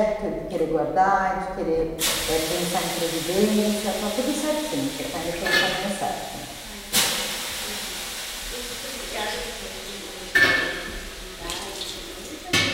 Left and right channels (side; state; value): both; identical; correlation 1.00